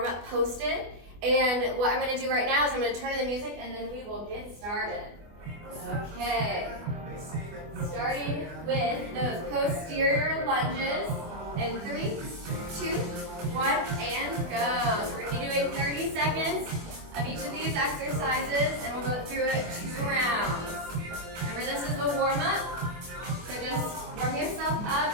posted. And what I'm going to do right now is I'm going to turn on the music and then we will get started. Okay. Starting with those posterior lunges. And 3, 2, 1, and go. So we're going to be doing 30 seconds of each of these exercises and we'll go through it 2 rounds. Remember, this is the warm-up. So just warm yourself up,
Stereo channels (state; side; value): late; left; 24 ms